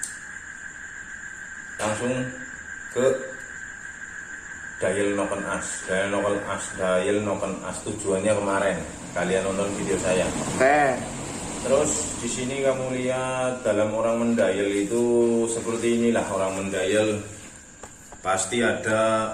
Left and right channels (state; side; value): identical; both; correlation 1.00